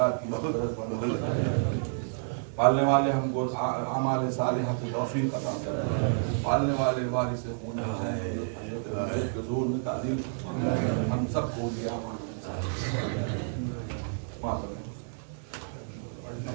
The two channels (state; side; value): silent; left; digital silence